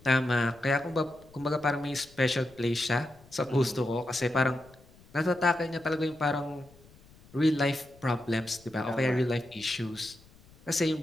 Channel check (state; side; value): noise; left; rumble, 25 dB below the sound